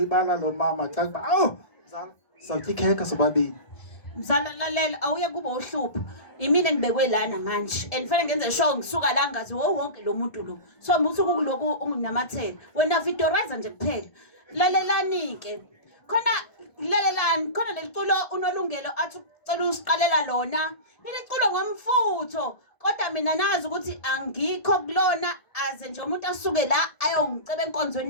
lo mama xa kuba awu mzala sizawutya ikhekhe sobabini mzala lalela awuye kuba uhlupha imina ngibekwe lana manje and fanele ngenze sure ngisuka la ngazi wonke lo muntu lo so musuku kuloku unginamathela wena vidorizer nje kuphela lalelani ke khona lalelani khona leliculo unolungelo athi ucela usiqalela lona leliculo ngomfutho kodwa mina nazi ukuthi angikho kulona aze nje umuntu asuke la ayongiceba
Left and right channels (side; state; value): right; late; 1.7 ms